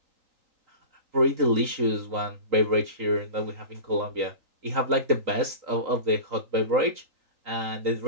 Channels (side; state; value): left; late; 3.9 ms